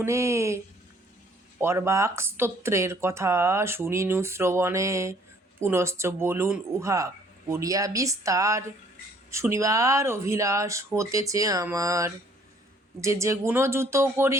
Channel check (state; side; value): normal; both; correlation 0.60